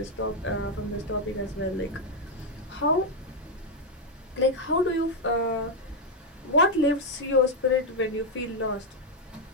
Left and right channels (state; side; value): normal; both; correlation 0.02